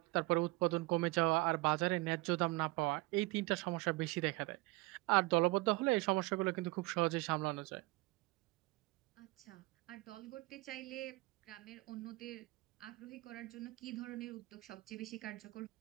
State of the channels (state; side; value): quieter; left; 22.6 dB